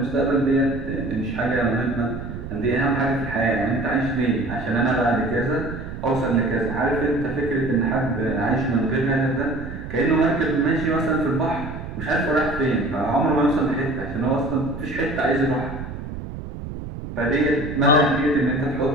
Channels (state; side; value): noise; right; rumble, 9 dB below the sound